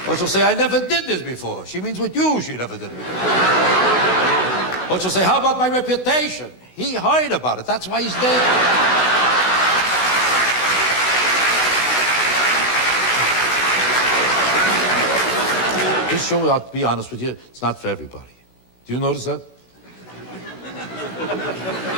Or she'll say, I never did this before. She means with you, she never did it before. Or she'll say, how about my reputation? He heard about it. That's why he's dead. This show, I'll be honest with you, it's not for everybody. Do you notice that?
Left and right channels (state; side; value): late; right; 16 ms